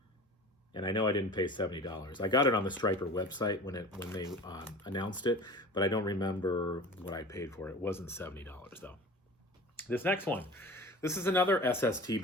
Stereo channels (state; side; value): normal; both; correlation 0.38